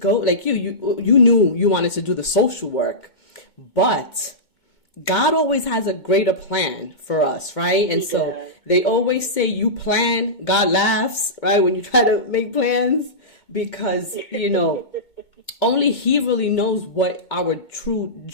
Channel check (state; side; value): late; right; 2.1 ms